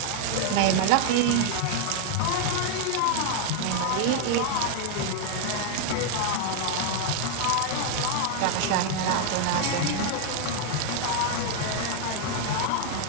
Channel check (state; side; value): different; both; correlation 0.00